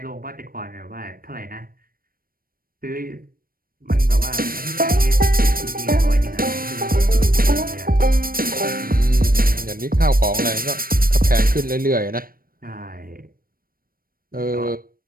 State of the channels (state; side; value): late; left; 0.42 ms